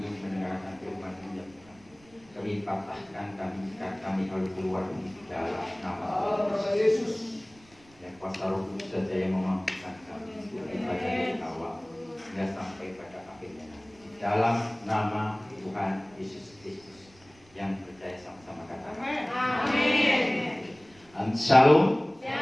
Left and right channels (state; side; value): noise; right; rumble, 28 dB below the sound